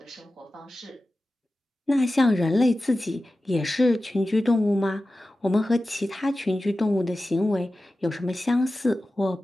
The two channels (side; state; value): both; normal; correlation 0.94